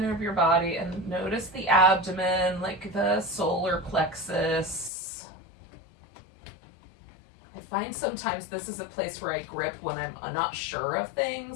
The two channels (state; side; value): drops out; right; at 4.9 s